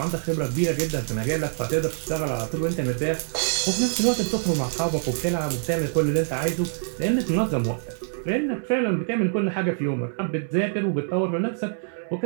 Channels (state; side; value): silent; left; digital silence